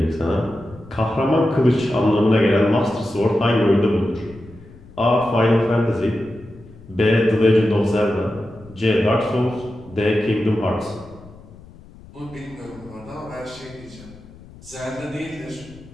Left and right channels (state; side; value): noise; left; rumble, 21 dB below the sound